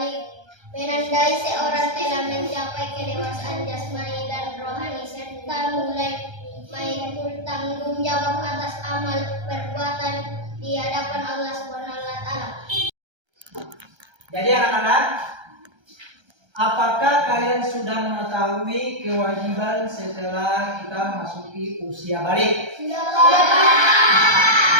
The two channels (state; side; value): late; left; 1.3 ms